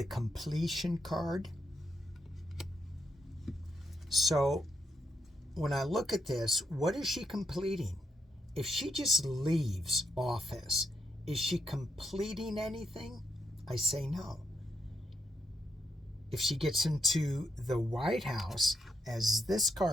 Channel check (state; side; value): normal; both; correlation 0.80